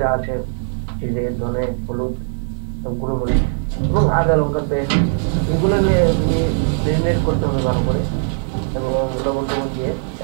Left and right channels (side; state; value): left; silent; digital silence